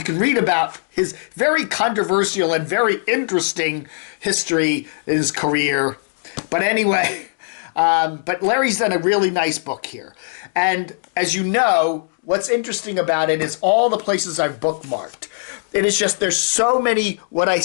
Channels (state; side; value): silent; right; digital silence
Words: can read about his very controversial and very interesting history in his career. But anyway, but Larry's done a really nice book here. And as you know, what's interesting about it is all the places I've bookmarked. It is just, there's so many what I